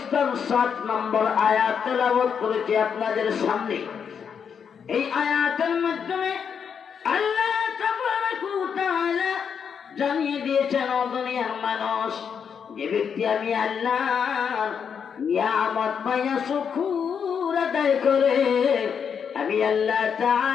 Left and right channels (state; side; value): quieter; right; 7.1 dB